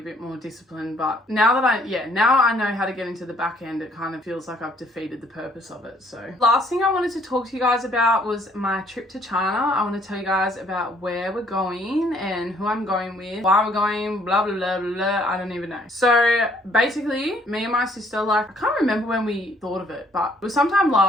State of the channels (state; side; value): normal; both; correlation 0.63